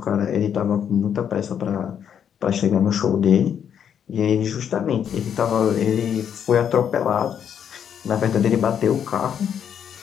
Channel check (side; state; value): right; quieter; 8.5 dB